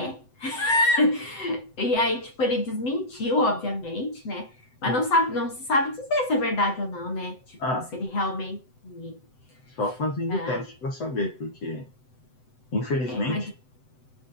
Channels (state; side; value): late; right; 7.8 ms